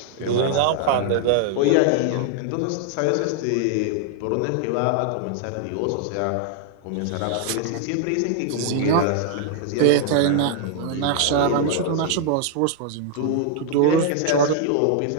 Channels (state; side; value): different; both; correlation 0.00